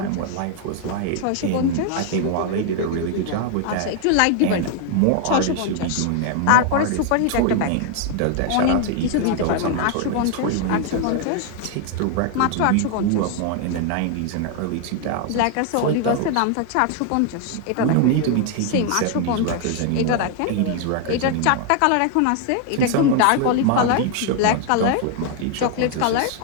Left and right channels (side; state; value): both; different; correlation 0.00